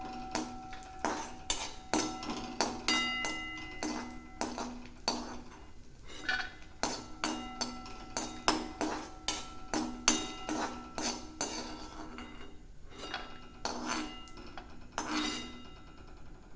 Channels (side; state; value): both; identical; correlation 1.00